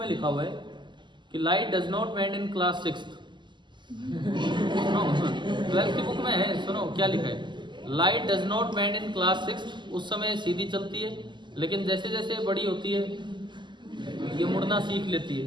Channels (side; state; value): left; late; 0.22 ms